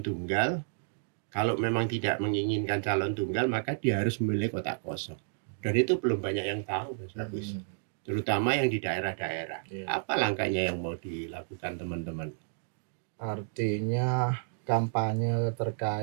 Kalau memang tidak menginginkan calon tunggal, maka dia harus memilih kotak kosong. Dan itu belum banyak yang tahu, Mas Agus. Terutama yang di daerah-daerah. Apa langkahnya yang mau dilakukan teman-teman? Artinya kampanye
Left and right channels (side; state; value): left; silent; digital silence